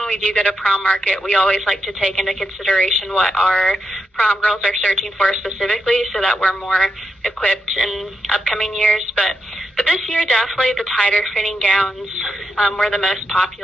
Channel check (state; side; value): normal; both; correlation 0.85